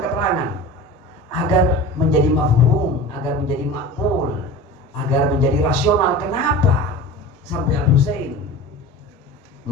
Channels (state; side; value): normal; both; correlation 0.35